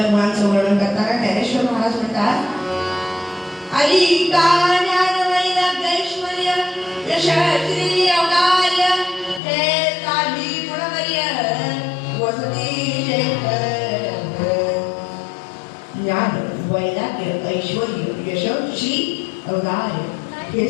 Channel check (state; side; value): drops out; right; at 9.4 s